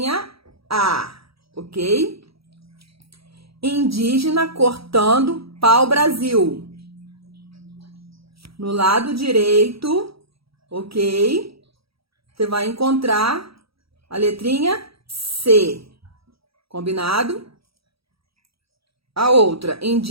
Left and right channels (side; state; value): left; late; 0.76 ms